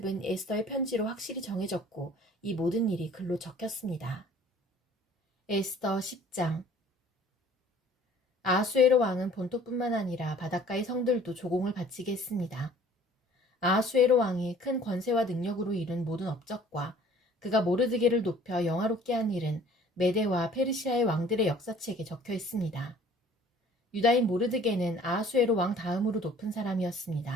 에스더의 편지로 확실히 정해졌고 이 모든 일이 글로 적혔습니다. 에스더 10장. 아하수에로 왕은 본토뿐만 아니라 바닷가의 성들도 조공을 바치게 했습니다. 아하수에로 왕이 큰 권세와 능력으로 이룬 모든 업적과 그가 모르드게를 높여 영화롭게 한 일은 메데와 페르시아의 왕들의 역사책에 적혀 있습니다. 유다인 모르드게는 아하수에로 왕 다음으로 높은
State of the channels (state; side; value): normal; both; correlation 0.52